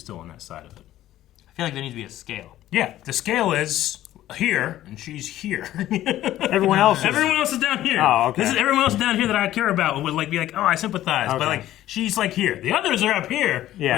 still on that side of it. I feel like there needs to be a scale. Yeah, the scale is here, and she's here. Everyone else is down here. Oh, okay. This is everyone else down here that I care about and would like be like, oh, I sympathize. Okay. But like, she's like here. The others are up here.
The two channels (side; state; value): right; quieter; 13.7 dB